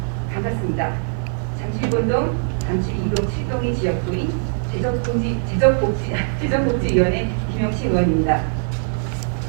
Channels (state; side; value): silent; left; 61 dB below the other